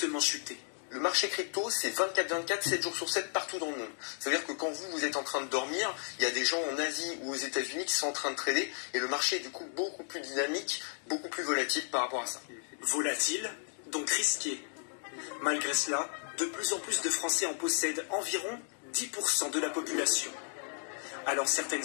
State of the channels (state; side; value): silent; right; 55 dB below the other